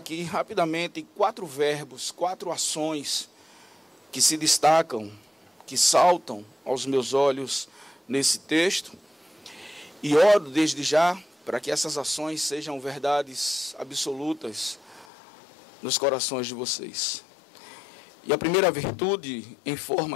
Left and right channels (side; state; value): right; drops out; at 15.1 s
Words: rapidamente 4 verbos, 4 ações que se destacam, que saltam aos meus olhos nesse texto. E oro desde já para que essas ações sejam verdades absolutas nos corações de vocês. E a primeira virtude em